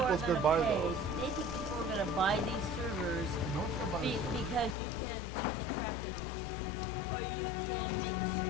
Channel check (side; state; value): right; drops out; at 4.8 s